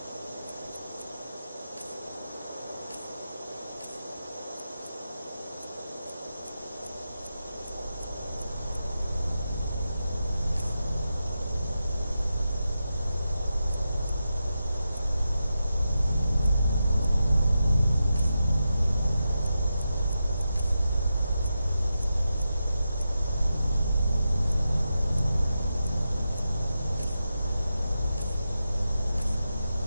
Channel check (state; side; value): inverted; both; correlation -0.89